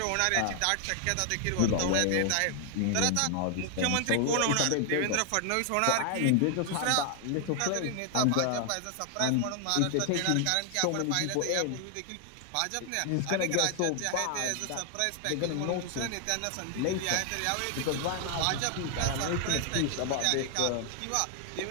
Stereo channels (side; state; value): both; different; correlation 0.00